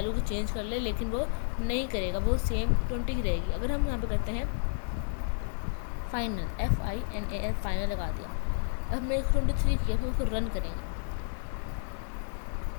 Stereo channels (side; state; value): right; silent; 57 dB below the other